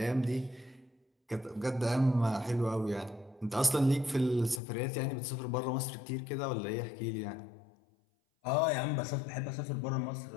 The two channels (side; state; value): right; drops out; at 4.6 s